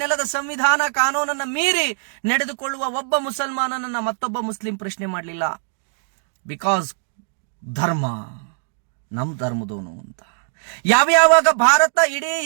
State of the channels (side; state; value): left; silent; digital silence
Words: ನೆಲದ ಸಂವಿಧಾನ ಕಾನೂನನ್ನ ಮೀರಿ ನಡೆದುಕೊಳ್ಳುವ ಒಬ್ಬ ಮುಸಲ್ಮಾನನನ್ನ ಮತ್ತೊಬ್ಬ ಮುಸ್ಲಿಂ ಪ್ರಶ್ನೆ ಮಾಡಲಿಲ್ಲ. ಬಿಕಾಸ್ ಧರ್ಮ ನಮ್ ಧರ್ಮದವನು ಅಂತ. ಯಾವ್ಯಾವಾಗ ಭಾರತ ಇಡೀ